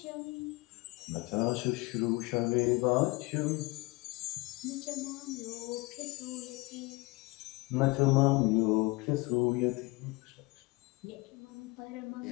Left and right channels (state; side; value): quieter; right; 24.1 dB